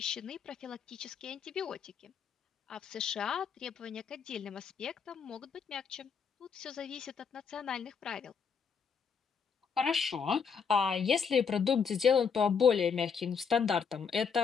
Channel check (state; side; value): quieter; right; 6.3 dB